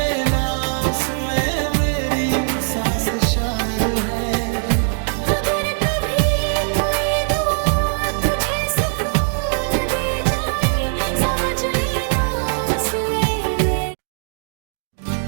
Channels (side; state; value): left; silent; 65 dB below the other